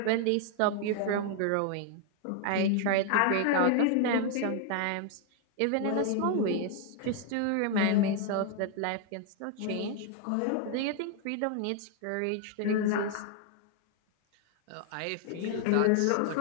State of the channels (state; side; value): different; both; correlation 0.00